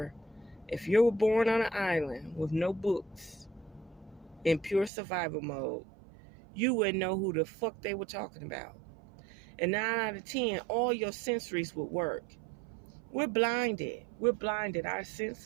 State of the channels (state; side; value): drops out; left; at 4.9 s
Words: if you were born on an island with no books, in pure survival mode, you wouldn't know who the fuck they were talking about. And 9 out of 10, all your sensories would work. We're blinded. Our